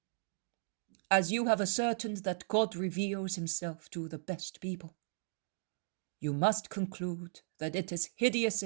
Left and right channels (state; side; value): silent; left; digital silence